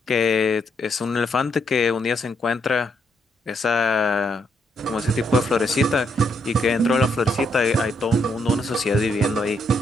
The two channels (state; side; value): normal; both; correlation 0.76